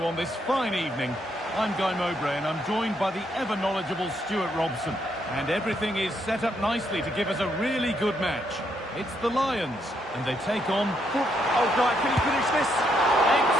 on this fine evening. I'm Guy Mowbray and I'm joined by the ever-knowledgeable Stuart Robson. And everything is set up nicely to give us a really good match. It's the Lions, and they take on... Oh, Guy, can he finish this?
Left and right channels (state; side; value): normal; both; correlation 0.75